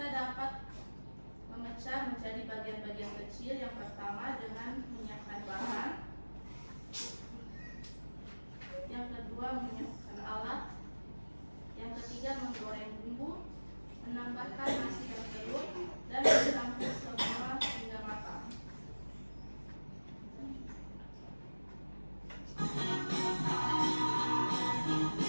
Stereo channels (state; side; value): inverted; both; correlation -1.00